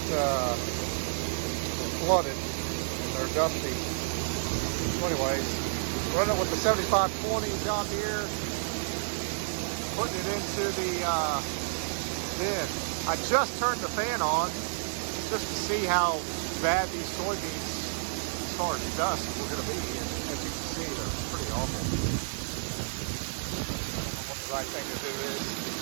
were flooded and they're dusty. So anyways, running with the 7520 John Deere, putting it into the bin. I just turned the fan on just to see how bad these soybeans as far as dust were going to be, and as you can see, they're pretty awful. I don't know what the right thing to do is.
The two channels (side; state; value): left; silent; 58 dB below the other